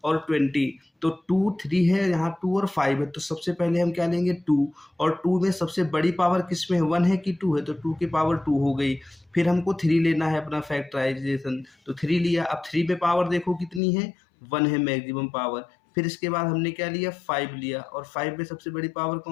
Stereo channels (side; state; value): right; drops out; at 13.8 s